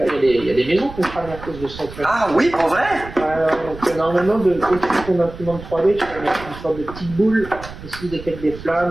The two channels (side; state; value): right; noise; rumble, 14 dB below the sound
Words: Il y a des maisons qui crament à cause de ça. Ah oui, pour vrai? Donc normalement, au-dessus de ton imprimante 3D, tu vas mettre une sorte de petite boule, et si détecte des